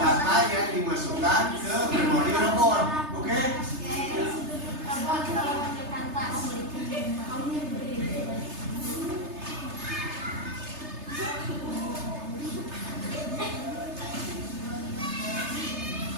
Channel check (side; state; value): left; late; 3.3 ms